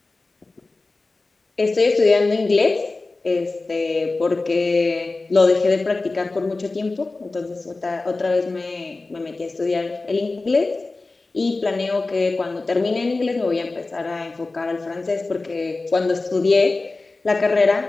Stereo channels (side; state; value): right; quieter; 3.4 dB